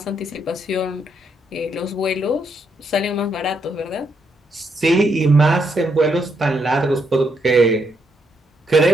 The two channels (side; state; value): both; normal; correlation 0.77